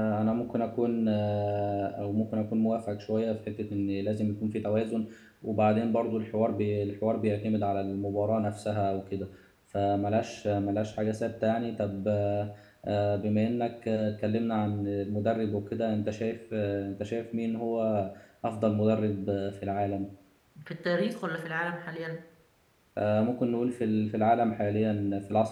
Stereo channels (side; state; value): both; identical; correlation 1.00